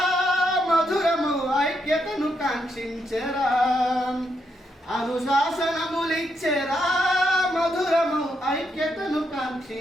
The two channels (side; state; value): both; normal; correlation 0.79